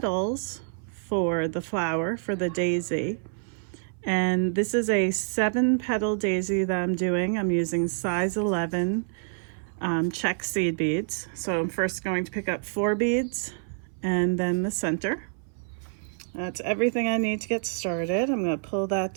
for the flower, for the daisy. And this is a 7-petal daisy that I'm doing. I'm using size 11 check seed beads. So I'm first going to pick up 4 beads and then the center. That's everything I need to get started. I'm going to pull that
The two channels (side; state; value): left; silent; 60 dB below the other